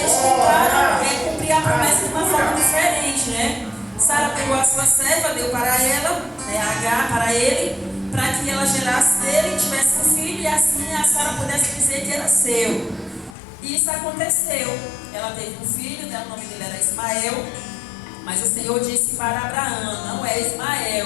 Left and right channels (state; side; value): drops out; right; at 13.4 s